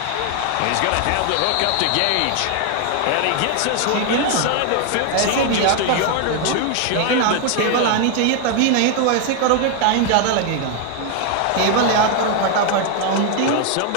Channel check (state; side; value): different; both; correlation 0.00